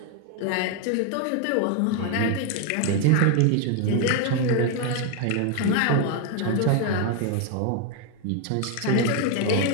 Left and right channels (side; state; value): both; different; correlation 0.01